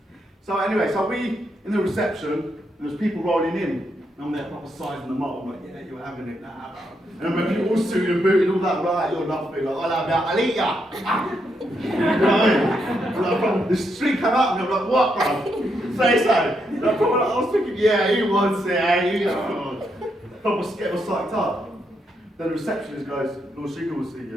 So anyway, so we, in the reception, and there's people rolling in, and I'm there proper sizing them up. I'm like, yeah, you're having it now. And when people all suited and booted and all that, right, you're nothing. Like, I'll eat ya. You know what I mean? The street came out and I'm like, what, bro? Say so. And I was thinking, yeah, he wants it, you know. Proper get was psyched up. Then the receptionist goes, Lord Sugar will see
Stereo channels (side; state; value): both; normal; correlation 0.80